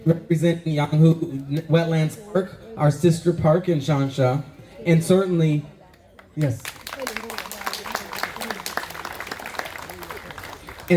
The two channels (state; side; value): identical; both; correlation 1.00